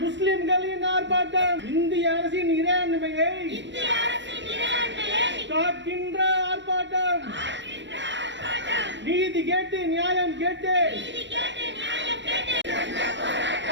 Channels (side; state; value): left; late; 0.53 ms